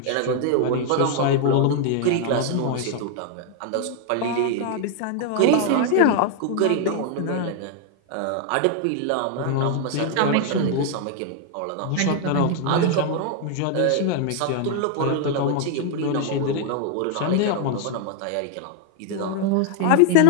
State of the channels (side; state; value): both; different; correlation 0.00